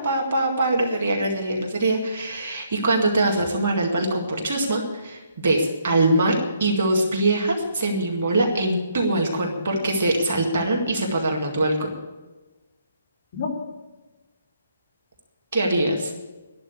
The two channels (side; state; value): both; inverted; correlation -0.70